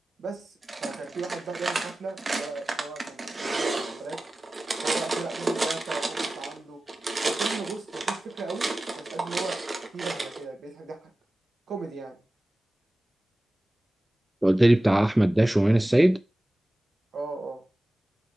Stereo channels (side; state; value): both; normal; correlation 0.97